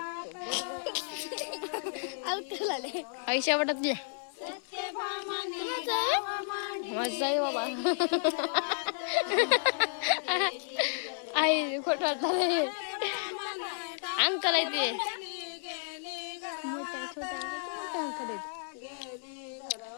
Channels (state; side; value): silent; right; digital silence